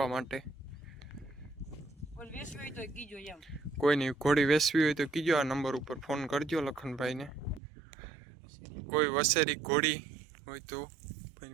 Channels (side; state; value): left; drops out; at 7.6 s